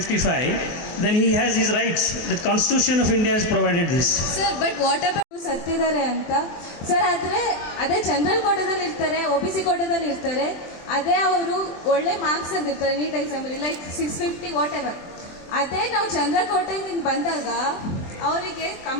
then he has his rights. The Constitution of India has provided this. Sir, but what about ಸತ್ತಿದ್ದಾರೆ ಅಂತ sir? ಅದೇ general ಕೋಟಾದಲ್ಲಿ ಇರ್ತಾರೆ, OBC ಕೋಟಾದಲ್ಲಿ ಇರ್ತಾರೆ, ಅದೇ ಅವರು ಒಳ್ಳೆ marks ತಂದಿರ್ತಾರೆ ನೀಟ್ ಎಕ್ಸಾಮಲ್ಲಿ, ಲೈಕ್ 650 ವಾಟ್ ಎವರ್. ಅದೇ ನಾವು ಜನರಲ್ ಕೋಟಾದಿಂದ ಬಂದಾಗ ಅವರಿಗೆ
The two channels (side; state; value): right; late; 23 ms